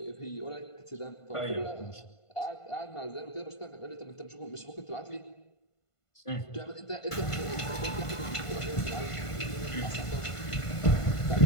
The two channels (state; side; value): late; right; 1.5 ms